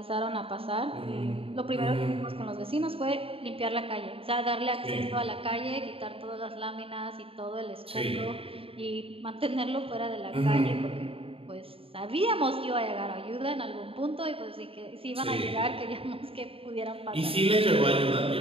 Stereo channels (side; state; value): left; late; 0.27 ms